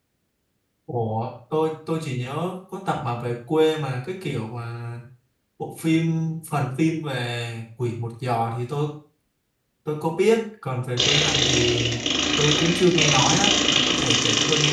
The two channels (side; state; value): both; identical; correlation 1.00